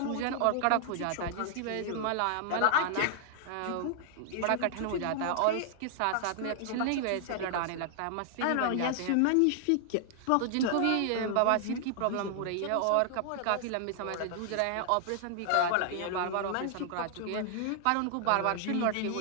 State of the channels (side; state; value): both; different; correlation 0.00